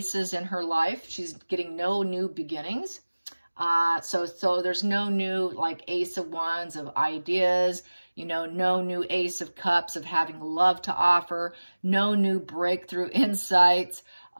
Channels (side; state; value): both; inverted; correlation -1.00